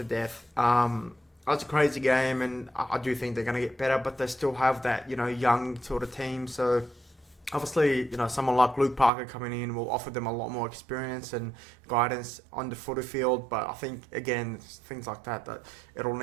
death. That's a crazy game, and I do think they're going to get better, but they still have that, young sort of team. So obviously, someone like Luke Parker coming in will offer them a lot more experience and guidance on the footy field. But I think, again, things like that it'll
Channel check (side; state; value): left; drops out; at 9.1 s